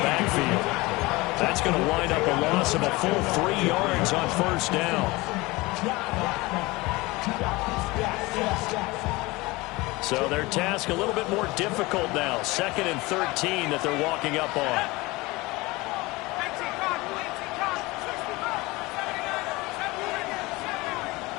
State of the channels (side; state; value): right; quieter; 22.2 dB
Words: backfield. That's going to wind up a loss of a full 3 yards on 1st down. So their task a little bit more difficult now. 2nd and 13 that they're walking up on.